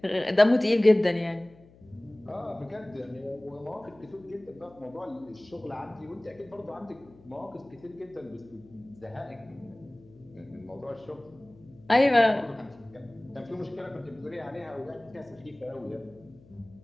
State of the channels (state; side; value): noise; left; hum, 25 dB below the sound